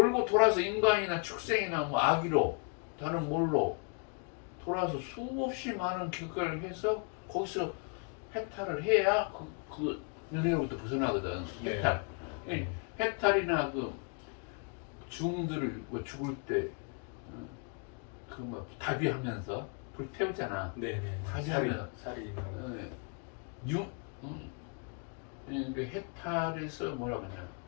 돌아서 인간이나 축생이나 뭐 아기로 다른 뭘로 돌아서 수없이 많은 격을 해서 거기서 해탈을 해야 그 윤회로부터 벗어나거든. 예. 해탈. 해탈이나 그 중들을 뭐 죽을 때 그 뭐 다비하면서 불 태우잖아. 네네. 다비하면 살이 그 해탈에서 뭐라고 하냐?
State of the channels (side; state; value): right; quieter; 37.5 dB